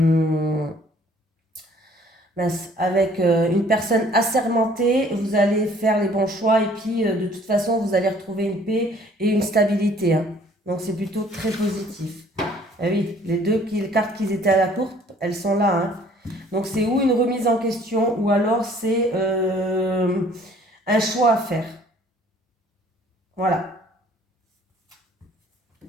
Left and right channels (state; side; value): normal; both; correlation 0.57